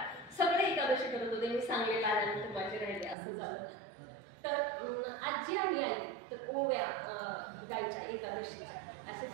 सगळे एकादशी करत होते, मी सांगलेलं आल्यानंतर माझे राहिले असं झालं. तर आजी आणि आई तर ओव्या गायच्या एकादशीच्या,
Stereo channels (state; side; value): drops out; left; at 3.2 s